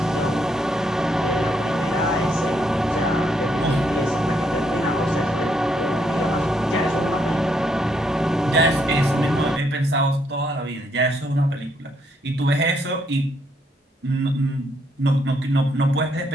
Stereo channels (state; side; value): normal; both; correlation 0.74